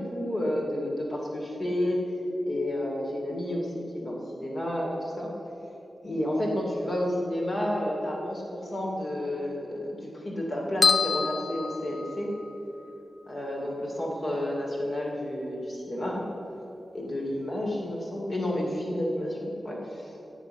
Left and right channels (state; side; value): normal; both; correlation 0.91